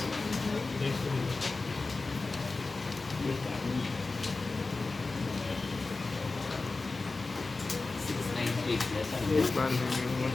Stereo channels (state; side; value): quieter; right; 3.6 dB